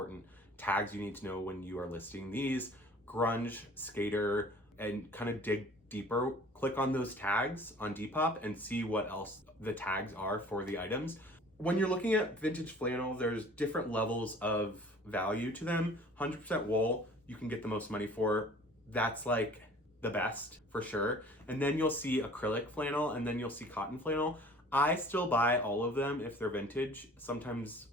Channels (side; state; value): both; normal; correlation 0.48